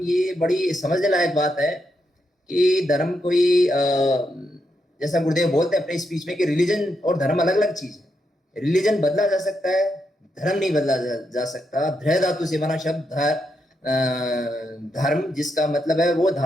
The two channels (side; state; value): both; normal; correlation 0.82